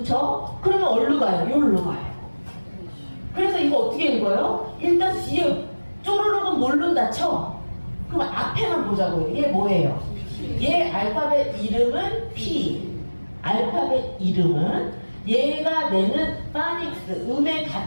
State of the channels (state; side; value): inverted; both; correlation -1.00